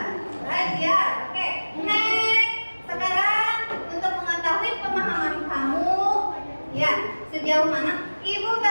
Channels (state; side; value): inverted; both; correlation -1.00